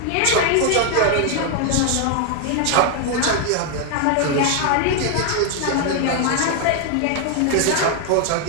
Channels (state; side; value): different; both; correlation 0.00